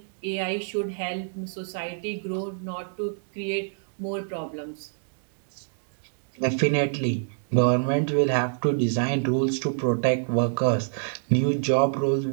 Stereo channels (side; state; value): left; silent; digital silence